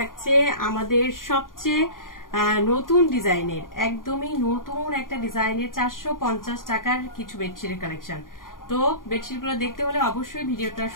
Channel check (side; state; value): right; late; 0.90 ms